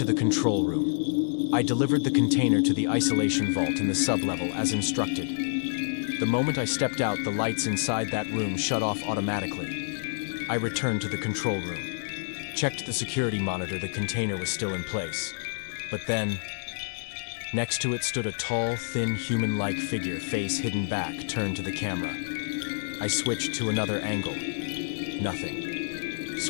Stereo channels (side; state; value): right; silent; digital silence